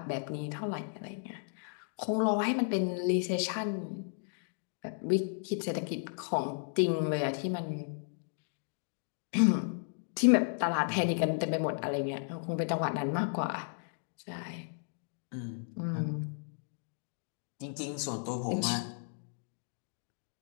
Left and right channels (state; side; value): silent; right; digital silence